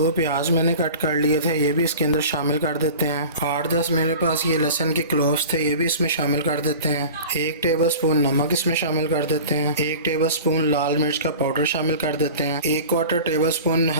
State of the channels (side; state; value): both; inverted; correlation -0.38